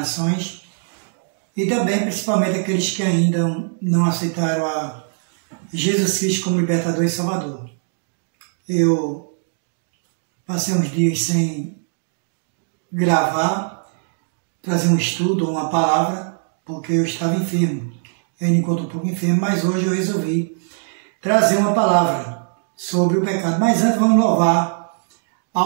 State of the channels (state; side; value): silent; left; digital silence